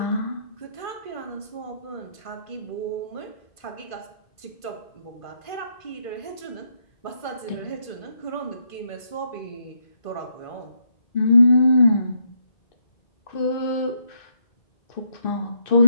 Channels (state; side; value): late; right; 1.5 ms